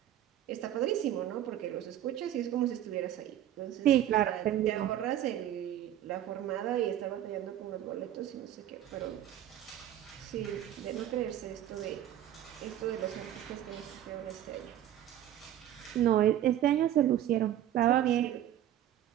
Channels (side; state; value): left; quieter; 11.9 dB